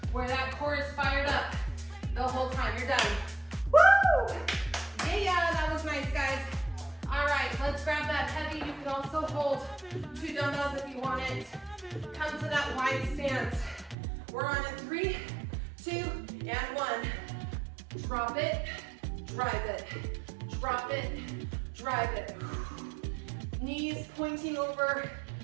where that core is fired up the whole time. You're done. Woo! Yeah, that was nice, guys. All right, let's grab that heavy. You can also hold 2 dumbbells if you want it. Come to that wide stance. We're on a 3, 2, and 1. Drop it, drive it. Drop it, drive it. Knees pointing over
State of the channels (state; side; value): drops out; left; at 14.0 s